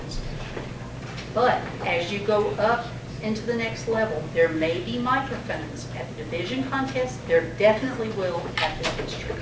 But as you go up into the next level, there may be microphones at the division contest. There definitely will at the district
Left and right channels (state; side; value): identical; both; correlation 1.00